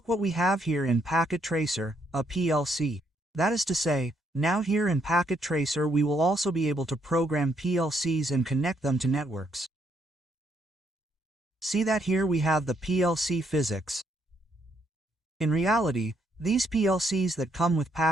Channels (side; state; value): both; normal; correlation 0.73